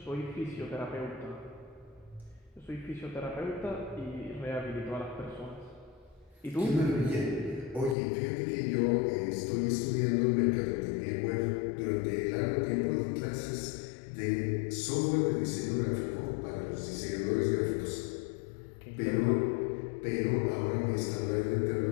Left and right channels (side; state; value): right; drops out; at 8.0 s